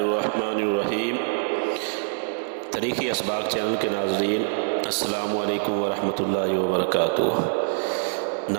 الرحیم۔ تاریخی اسباق چینل کے ناظرین، السلام علیکم ورحمۃ اللہ وبرکاتہ۔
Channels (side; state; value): left; silent; digital silence